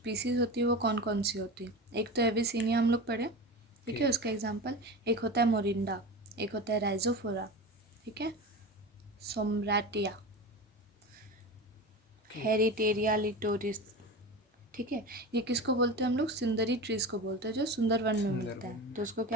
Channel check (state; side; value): normal; both; correlation 0.28